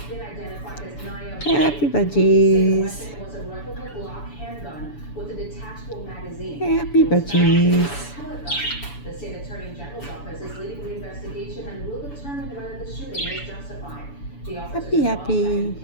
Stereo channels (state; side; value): late; right; 7.0 ms